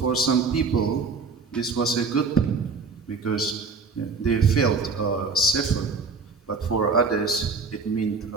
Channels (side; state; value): left; quieter; 4.5 dB